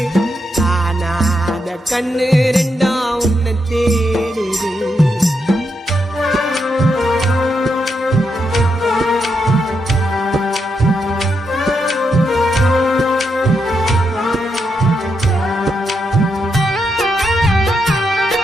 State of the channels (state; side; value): normal; both; correlation 0.82